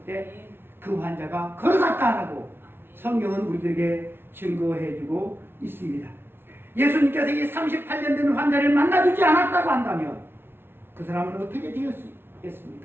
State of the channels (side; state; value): left; late; 0.11 ms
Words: 때 그 환자가 걸어갔다라고 성경은 우리들에게 증거해주고 있습니다. 예수님께서 이 38년 된 환자를 만나주지 않았다고 한다면 그 사람은 어떻게 되었습니까?